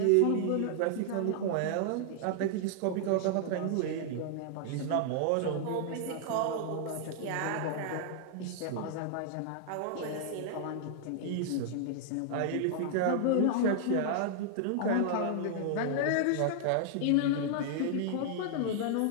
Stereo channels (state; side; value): different; both; correlation -0.01